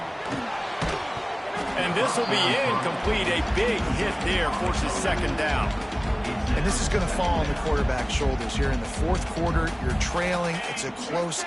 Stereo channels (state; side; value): identical; both; correlation 1.00